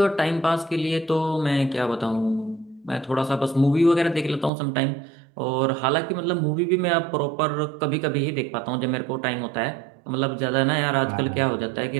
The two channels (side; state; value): left; drops out; at 4.5 s